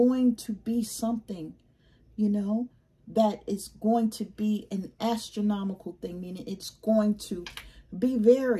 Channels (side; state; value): both; identical; correlation 1.00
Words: to be something, you know, that is going to be an astronomical thing, meaning it's going to be